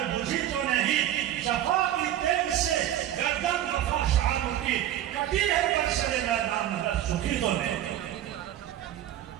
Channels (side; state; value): left; quieter; 12.1 dB